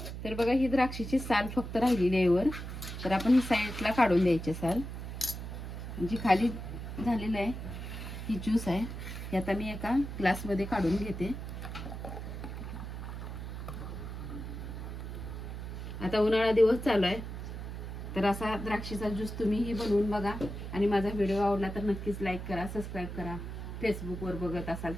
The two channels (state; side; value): noise; right; hum, 7 dB below the sound